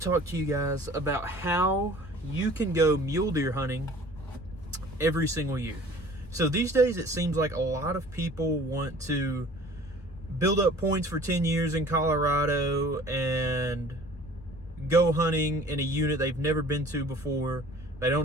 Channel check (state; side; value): noise; left; rumble, 17 dB below the sound